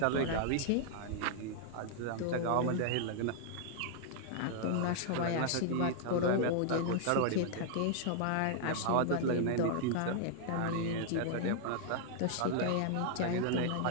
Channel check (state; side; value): different; both; correlation -0.01